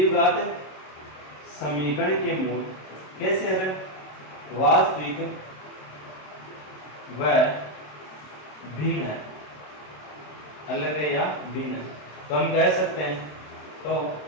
समीकरण के मूल कैसे है वास्तविक व भिन्न है, अलग है या भिन्न है। तो हम कह सकते हैं तो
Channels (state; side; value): late; right; 27 ms